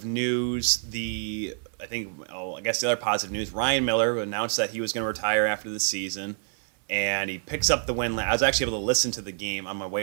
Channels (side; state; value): left; silent; digital silence